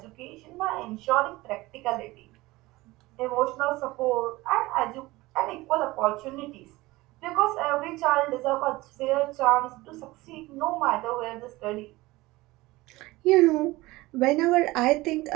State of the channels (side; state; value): left; quieter; 20.0 dB